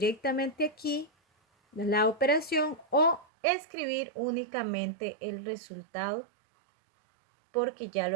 aquí la operación o escribir únicamente el resultado porque ya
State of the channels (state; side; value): drops out; left; at 3.2 s